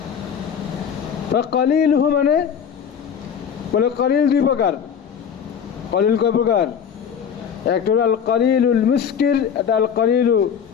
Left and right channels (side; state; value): right; quieter; 7.7 dB